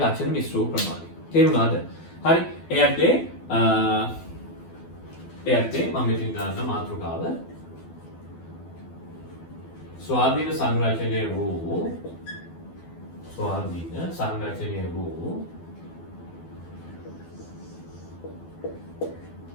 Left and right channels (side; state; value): right; late; 12 ms